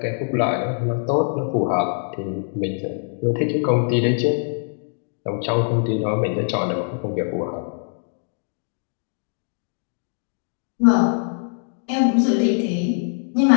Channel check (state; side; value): silent; right; digital silence